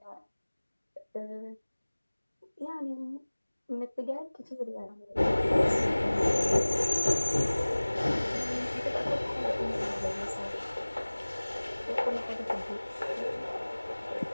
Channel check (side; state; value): both; inverted; correlation -1.00